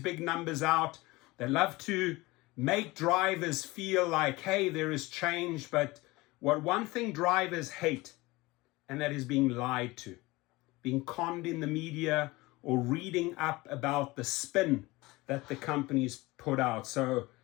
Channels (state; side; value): quieter; right; 21.5 dB